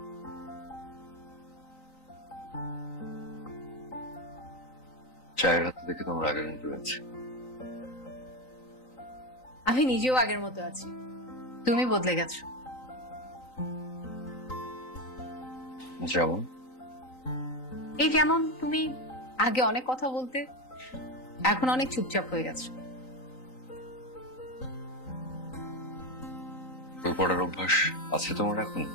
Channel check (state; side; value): late; right; 3.9 ms